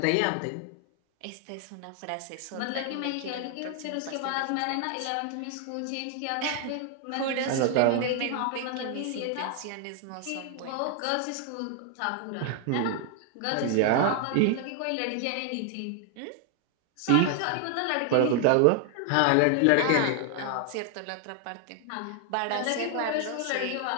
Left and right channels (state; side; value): different; both; correlation 0.00